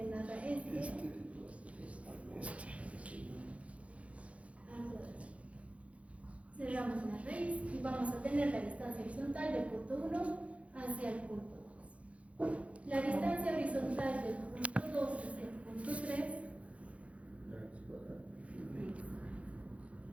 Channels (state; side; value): late; left; 0.064 ms